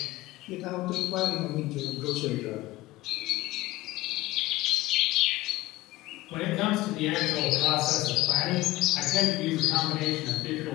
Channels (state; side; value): quieter; right; 17.8 dB